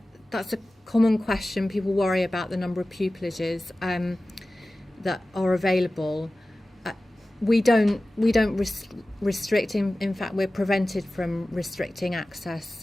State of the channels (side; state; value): both; normal; correlation 0.96